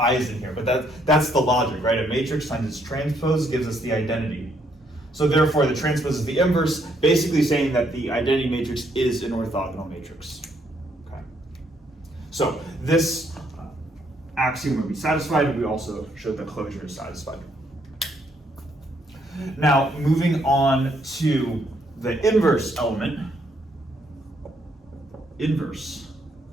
in here, but that's the logic, right? A matrix times its transpose gives us the identity. So therefore the transpose is the inverse, basically saying that the identity matrix is an orthogonal matrix. Okay. So this axiom would be satisfied. We also showed that closure is satisfied. Now moving on to the inverse element. Inverse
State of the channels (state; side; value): normal; both; correlation 0.71